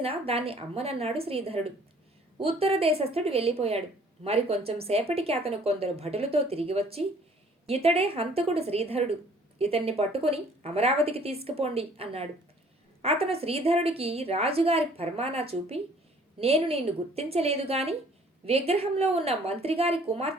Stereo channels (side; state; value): both; normal; correlation 0.56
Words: దాన్ని అమ్మనన్నాడు శ్రీధరుడు. ఉత్తర దేశస్థుడు వెళ్ళిపోయాడు. మరి కొంచెం సేపటికి అతను కొందరు భటులతో తిరిగి వచ్చి, ఇతడే హంతకుడు శ్రీధరుడు, ఇతన్ని పట్టుకొని అమరావతికి తీసుకుపోండి అన్నాడు. అతను శ్రీధరుడికి రాజుగారి ఫర్మానా చూపి, నేను నిన్ను గుర్తించలేదు గాని విగ్రహంలో ఉన్న మంత్రిగారి